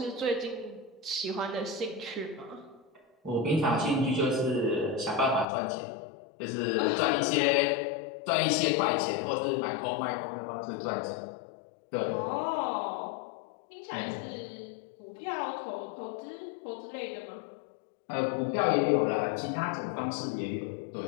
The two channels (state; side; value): drops out; right; at 5.5 s